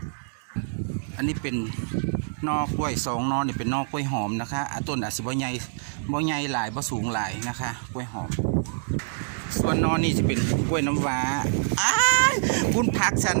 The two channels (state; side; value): silent; left; digital silence